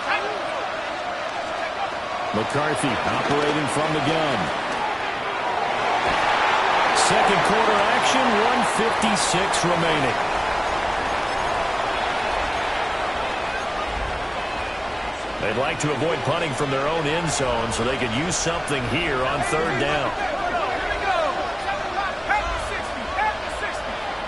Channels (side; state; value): both; identical; correlation 1.00